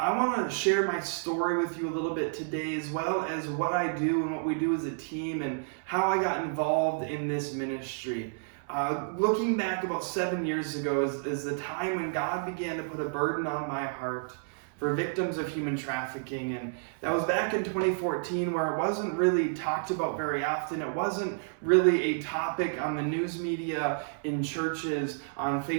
want to share my story with you a little bit today, as well as what I do and what we do as a team and how I got involved in this ministry. Looking back about 7 years ago is the time when God began to put a burden on my heart for victims of human trafficking. And that was back in 2014, where it wasn't really talked about very often. It wasn't really a topic on the news media, in churches, on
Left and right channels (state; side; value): silent; left; 58 dB below the other